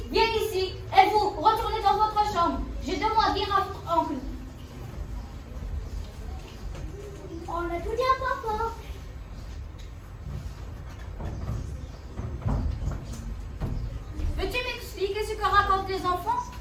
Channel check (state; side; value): identical; both; correlation 1.00